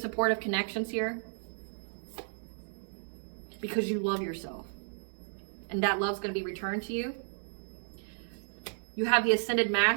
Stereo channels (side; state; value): left; silent; 56 dB below the other